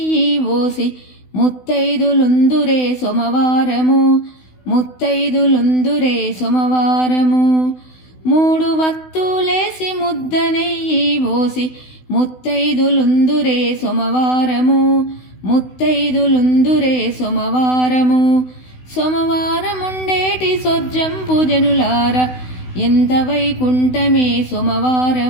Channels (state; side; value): late; right; 16 ms